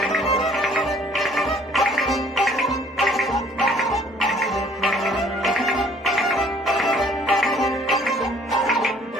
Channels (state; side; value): normal; both; correlation 0.58